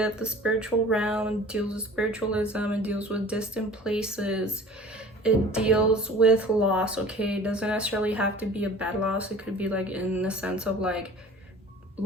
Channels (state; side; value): normal; both; correlation 0.44